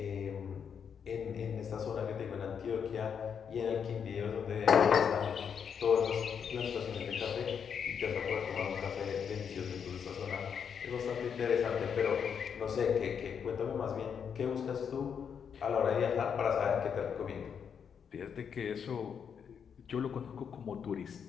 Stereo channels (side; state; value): right; quieter; 7.2 dB